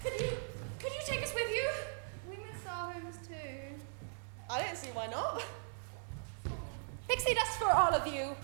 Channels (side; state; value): left; silent; 52 dB below the other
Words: Could you take us with you? We miss our homes too. I don't see why not. Pixie dust for all of you.